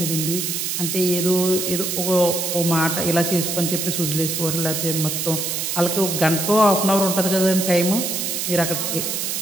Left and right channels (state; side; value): noise; right; hiss, 2 dB below the sound